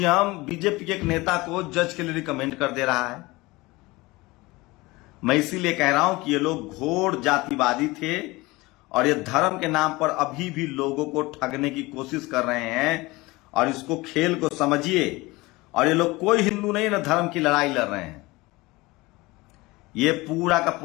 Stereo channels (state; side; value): quieter; right; 21.8 dB